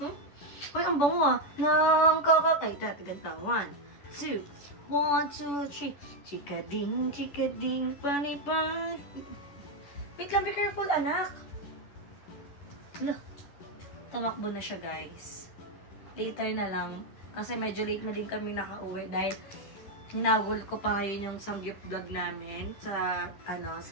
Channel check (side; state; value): right; late; 11 ms